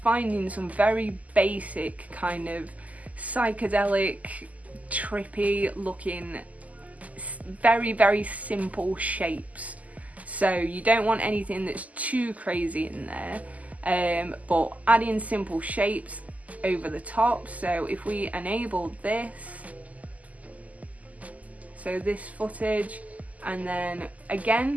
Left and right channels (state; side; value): late; left; 0.075 ms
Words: some very basic kind of psychedelic, trippy looking, very, very simple shapes. So you don't want anything that's too crazy in there, but adding simple shapes over the top. So if we enable this, so this footage, and then